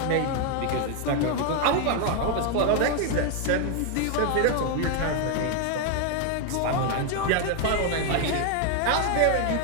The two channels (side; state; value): both; different; correlation 0.01